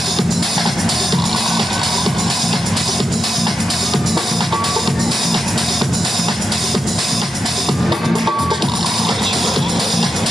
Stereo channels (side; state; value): both; normal; correlation 0.87